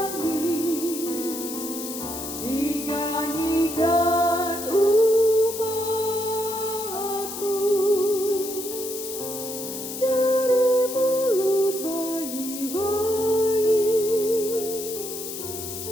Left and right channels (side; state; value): left; noise; hiss, 8 dB below the sound